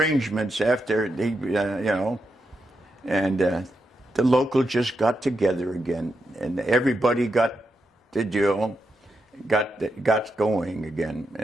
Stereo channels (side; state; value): both; normal; correlation 0.84